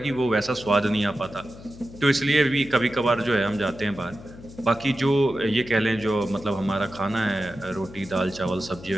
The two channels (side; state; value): left; noise; hum, 17 dB below the sound